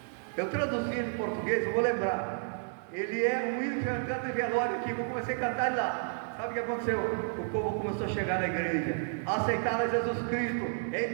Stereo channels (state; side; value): silent; left; digital silence